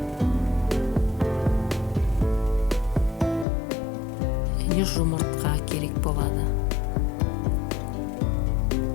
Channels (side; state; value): right; drops out; at 3.5 s